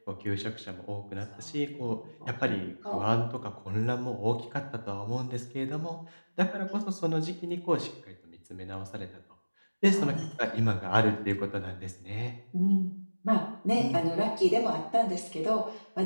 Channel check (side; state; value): both; inverted; correlation -1.00